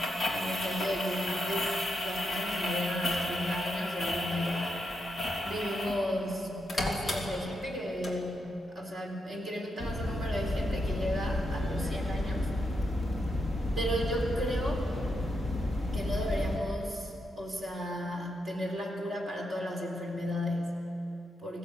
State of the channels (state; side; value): normal; both; correlation 0.83